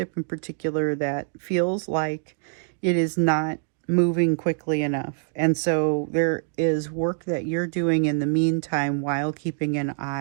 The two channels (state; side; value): silent; left; digital silence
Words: in particular that feels like it is not moving quickly enough. And so there is work that you're doing in the meantime while keeping an